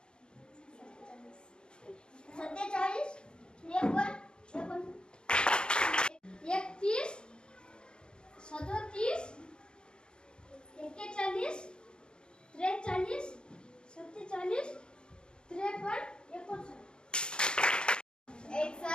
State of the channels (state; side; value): late; right; 0.050 ms